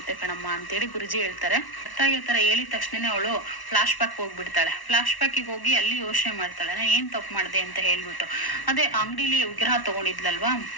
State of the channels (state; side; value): late; right; 1.1 ms